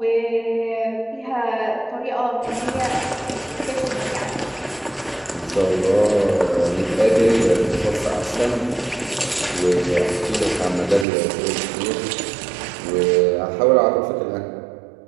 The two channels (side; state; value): left; drops out; at 11.1 s